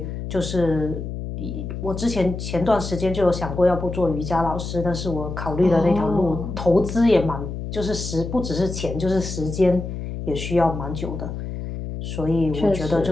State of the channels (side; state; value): left; noise; hum, 6 dB below the sound